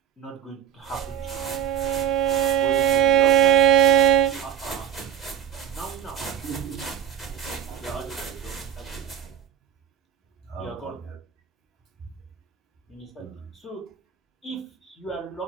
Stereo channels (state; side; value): quieter; left; 9.9 dB